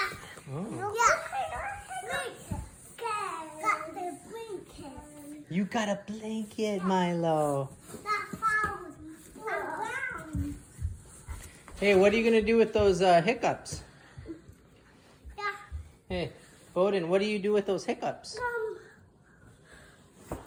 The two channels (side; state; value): both; identical; correlation 1.00